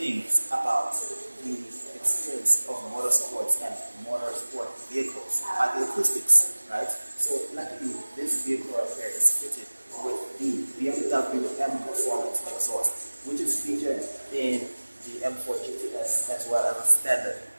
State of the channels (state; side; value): inverted; both; correlation -1.00